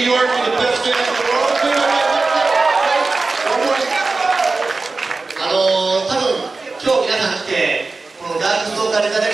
York, for the best fans in the world. One more. 多分今日皆さん来てこのダークストーカーレザレク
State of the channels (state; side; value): quieter; left; 3.7 dB